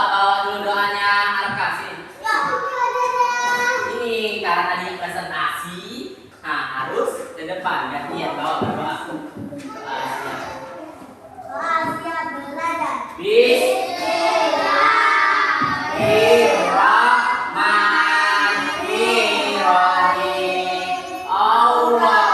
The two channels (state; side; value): identical; both; correlation 1.00